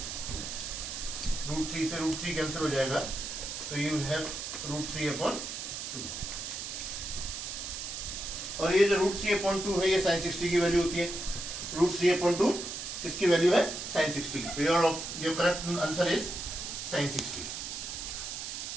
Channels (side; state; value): right; noise; hiss, 6 dB below the sound